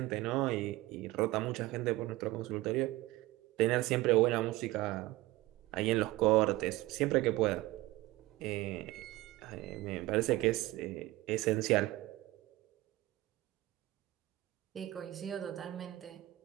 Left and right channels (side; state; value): left; quieter; 18.2 dB